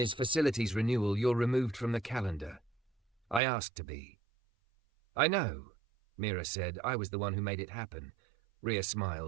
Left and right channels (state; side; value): drops out; left; at 3.4 s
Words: facilities renewal. You're removed from the calendar." "I asked to be." "I know," Mira said. "I was the one who made it happen." Rhea